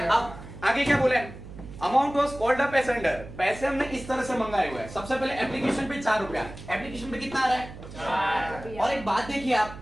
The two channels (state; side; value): noise; right; hum, 14 dB below the sound